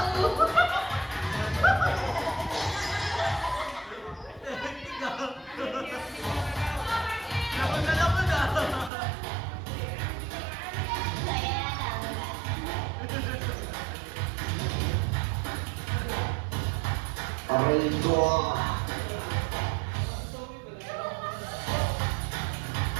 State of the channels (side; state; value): left; drops out; at 8.9 s